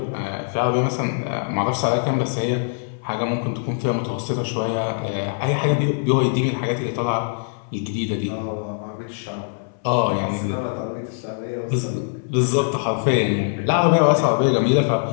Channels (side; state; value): right; silent; 62 dB below the other